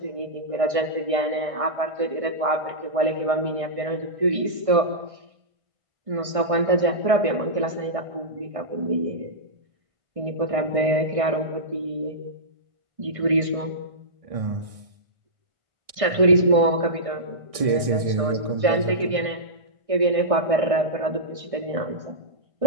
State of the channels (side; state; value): left; late; 1.6 ms